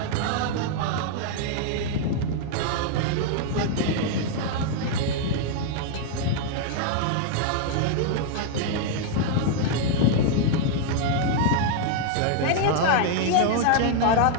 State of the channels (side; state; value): both; different; correlation 0.00